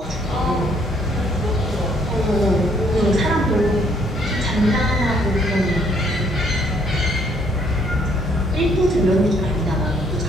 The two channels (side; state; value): both; normal; correlation 0.66